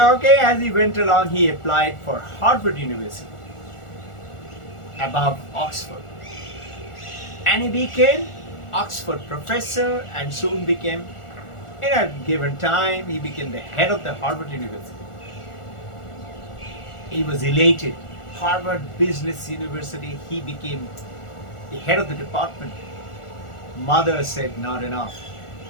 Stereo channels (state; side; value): late; right; 1.4 ms